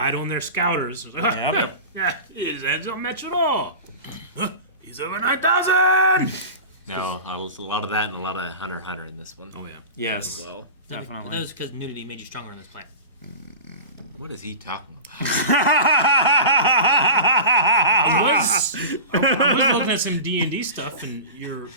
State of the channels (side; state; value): both; inverted; correlation -0.32